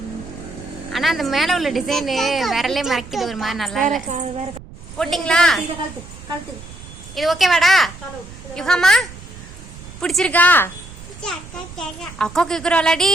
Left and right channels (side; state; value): right; noise; rumble, 16 dB below the sound